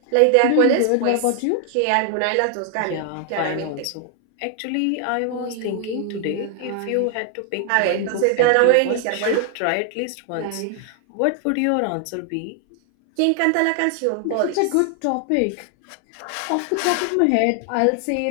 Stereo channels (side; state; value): both; different; correlation 0.00